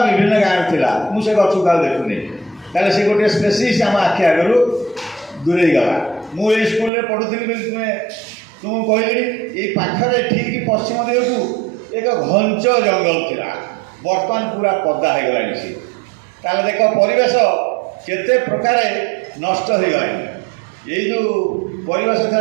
ବିଭିନ୍ନ ଗାଁରେ ଥିଲା। ମୁଁ ସେ ଗଛକୁ ଆଉ ଦେଖୁନି। ତାହେଲେ ସେ ଗୋଟିଏ ସ୍ପେସିସ୍ ଆମ ଆଖି ଆଗରୁ ଦୂରେଇ ଗଲା। ମୁଁ ଏଇ ସ୍କୁଲରେ ପଢ଼ୁଥିଲି ବୋଲି ତୁମକୁ କହିଲି, ଏଇ ପାଖରେ ଠିକ୍ ପଶ୍ଚିମ ଦିଗକୁ ଏକ ଘଞ୍ଚ ଜଙ୍ଗଲ ଥିଲା, ବର୍ତ୍ତମାନ ପୁରା ପଦା ହେଇଗଲାଣି ସେ। ତାହେଲେ ଦେଖ ପରିବେଶ କେତେ ପ୍ରକାର ନଷ୍ଟ ହେଇଗଲାଣି। ଏଇ ଯେଉଁ ପରିବେଶ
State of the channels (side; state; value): left; drops out; at 6.9 s